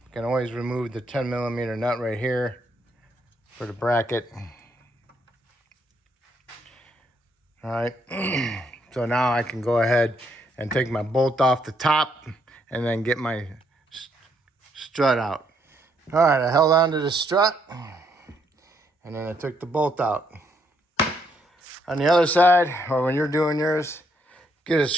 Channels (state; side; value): normal; both; correlation 0.73